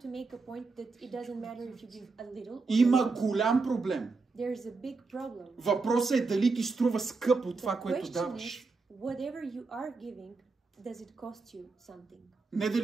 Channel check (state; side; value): quieter; left; 4.1 dB